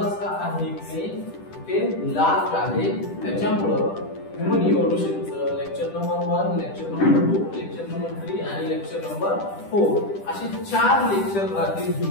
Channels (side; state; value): right; late; 10 ms